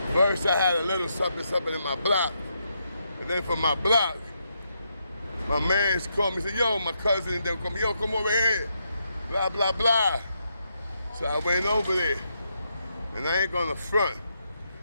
First I had a little something in my block. And then from my block, my mans called me and said, yo, my cousin and them called me, yo, come over here. Blah, blah, blah. So I went over there. And I ain't gonna front.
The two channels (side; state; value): both; inverted; correlation -0.81